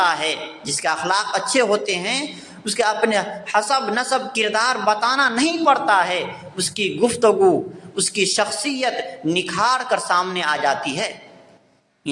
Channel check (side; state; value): both; identical; correlation 1.00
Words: ہے۔ جس کے اخلاق اچھے ہوتے ہیں اس کے اپنے حسب نسب کردار بتانا نہیں پڑتا ہے، اس کی گفتگو، اس کی شخصیت نکھار کر سامنے آ جاتی ہے۔